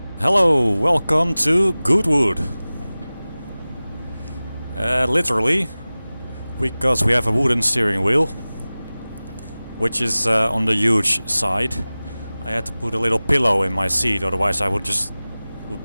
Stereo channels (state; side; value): inverted; both; correlation -0.98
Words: Hello, welcome to Goodwood. Literally, because we have a wooden steering wheel, which is on the huge side. I had to put a little pillow in my seat, otherwise I would